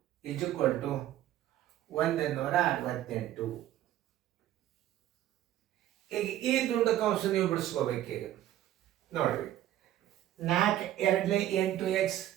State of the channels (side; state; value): left; quieter; 13.0 dB